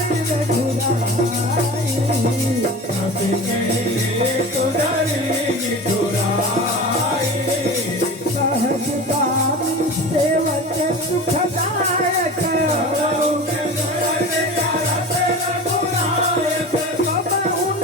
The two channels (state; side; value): normal; both; correlation 0.33